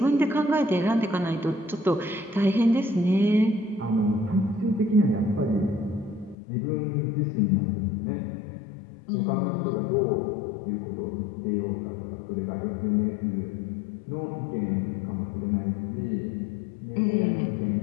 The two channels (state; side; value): drops out; right; at 6.4 s